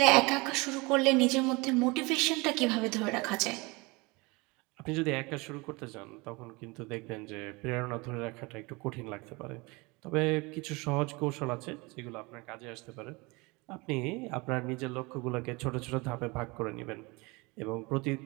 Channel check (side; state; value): left; quieter; 25.7 dB